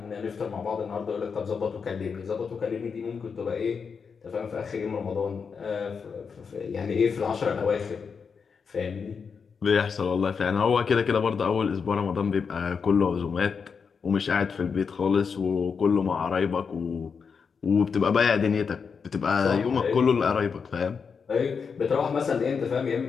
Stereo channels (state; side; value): quieter; right; 5.8 dB